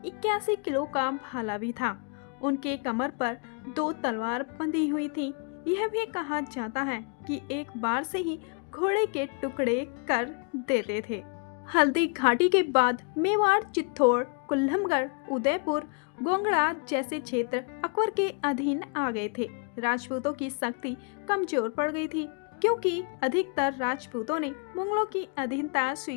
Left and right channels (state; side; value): quieter; right; 38.8 dB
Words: 81 किलो का भाला भी था। उनके कमर पर 2 तलवार बंधी हुई थी। यह भी कहा जाता है कि एक बार से ही घोड़े के टुकड़े कर देते थे। हल्दी घाटी के बाद मेवाड़, चित्तौड़, कुल्लमगढ़, उदयपुर, गोंगड़ा जैसे क्षेत्र अकबर के अधीन आ गए थे। राजपूतों की शक्ति कमजोर पड़ गई थी क्योंकि अधिकतर राजपूतों ने मुगलों की अधीनता